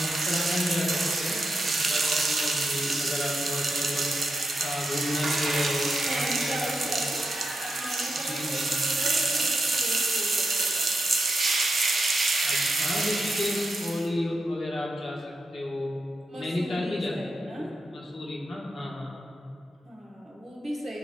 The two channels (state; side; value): normal; both; correlation 0.87